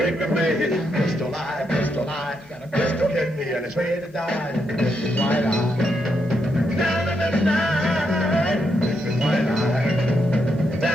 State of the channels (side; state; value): both; normal; correlation 0.80